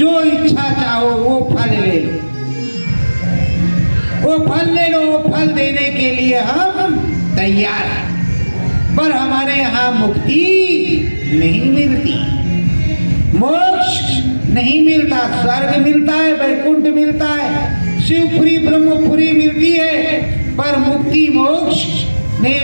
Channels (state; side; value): inverted; both; correlation -1.00